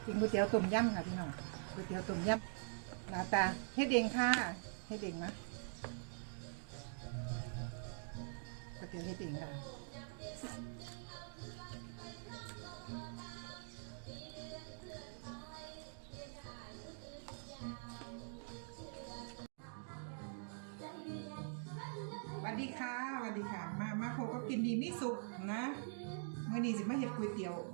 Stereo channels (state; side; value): silent; left; digital silence